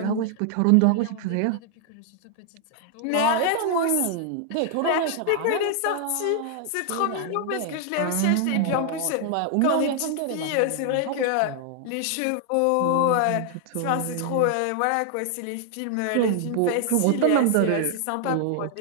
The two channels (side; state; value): both; different; correlation 0.00